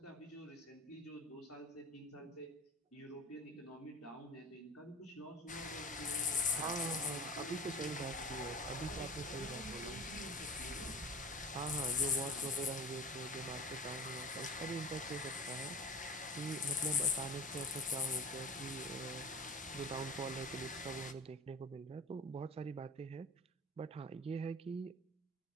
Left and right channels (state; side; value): normal; both; correlation 0.36